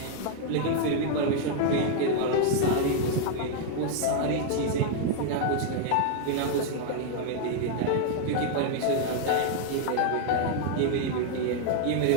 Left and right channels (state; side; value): different; both; correlation 0.00